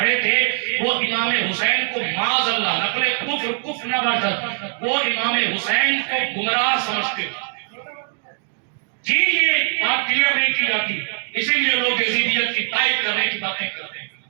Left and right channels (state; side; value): silent; left; 65 dB below the other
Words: تھے, وہ امام حسین کو معاذ اللہ نقل کفر نہ باشد, وہ امام حسین کو گمراہ سمجھتے تھے. جی یہ بات کلیئر نہیں کی جاتی, اسی لیے لوگ یزیدیت کی تائید کرنے کی باتیں کرتے ہیں.